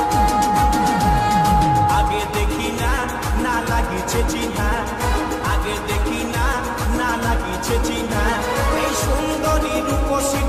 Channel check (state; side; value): identical; both; correlation 1.00